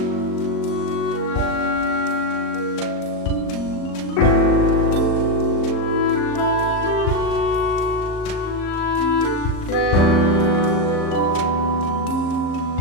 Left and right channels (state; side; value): late; right; 38 ms